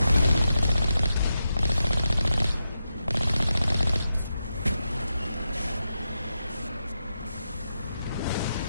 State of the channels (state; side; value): inverted; both; correlation -0.88